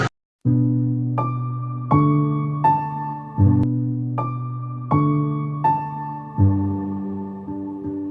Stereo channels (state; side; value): identical; both; correlation 1.00